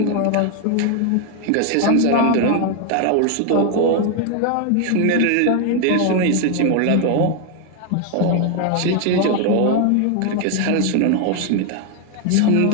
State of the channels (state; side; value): different; both; correlation 0.01